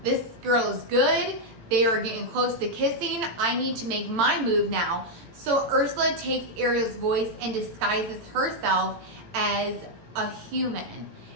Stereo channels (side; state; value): left; late; 18 ms